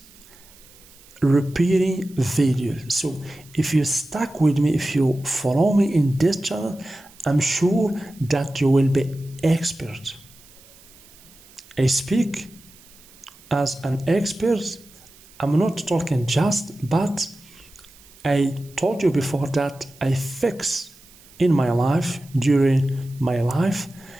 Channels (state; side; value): noise; right; hiss, 25 dB below the sound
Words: repairing videos. So if you stuck with me, if you follow me in this channel, I'm sure that you will be expert. I speak as an expert. I'm not talking just, but I told you before that I fix in my life, during my life,